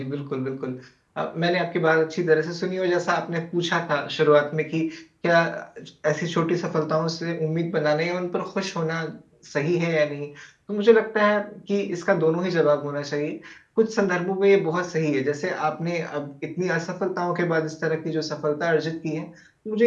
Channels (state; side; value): identical; both; correlation 1.00